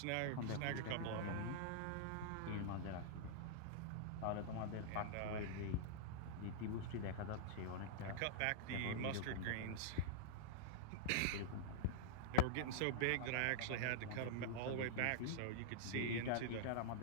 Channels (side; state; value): both; different; correlation -0.01